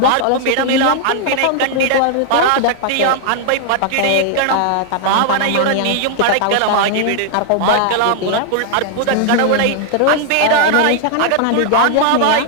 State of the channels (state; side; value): different; both; correlation 0.00